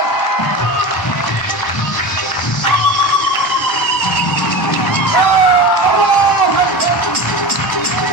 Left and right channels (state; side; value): late; right; 1.1 ms